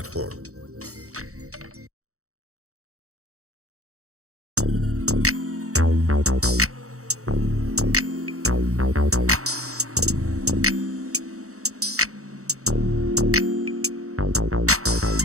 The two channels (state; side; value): late; left; 0.65 ms